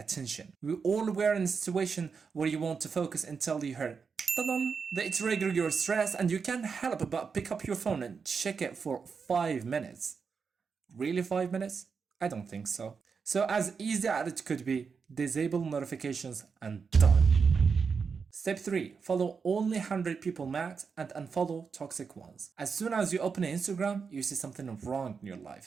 We all were in a situation where you want to focus until you heard ta-dum. They trigger your stress and you can't help but pick up your phone and check it for 5 minutes. Really 5 minutes? I don't think so. So as easy as it could be, disable notifications and done. Step 3. Follow only 100 people max and unfollow toxic ones. As soon as you open Instagram, you see something wrong in your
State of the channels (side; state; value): left; quieter; 5.6 dB